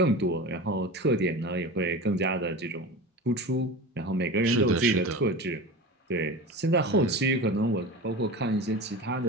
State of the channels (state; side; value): normal; both; correlation 0.30